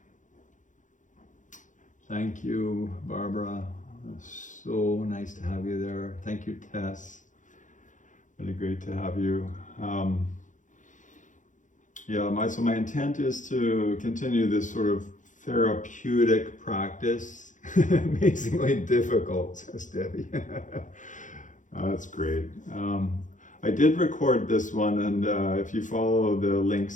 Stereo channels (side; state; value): right; late; 0.37 ms